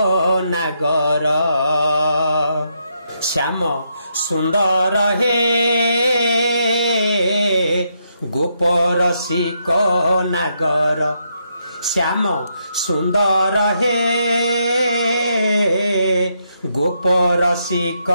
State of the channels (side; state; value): both; inverted; correlation -0.78